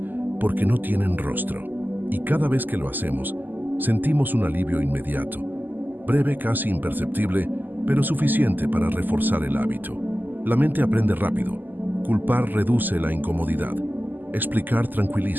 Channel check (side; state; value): left; late; 0.087 ms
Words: porque no tienen rostro. Y cada vez que lo hacemos, sentimos un alivio inmediato, breve, casi imperceptible, pero suficiente para reforzar el hábito. La mente aprende rápido. Culpar reduce la incomodidad. Explicar